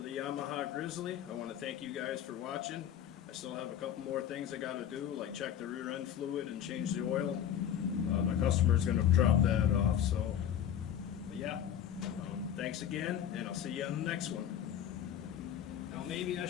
Yamaha Grizzly. I want to thank you guys for watching. I still have a couple more things I got to do, like check the rear end fluid and change the oil. My customer's going to drop that off, so but yeah. Thanks again, and I'll see you on the next one. Now maybe I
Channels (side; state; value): right; quieter; 9.7 dB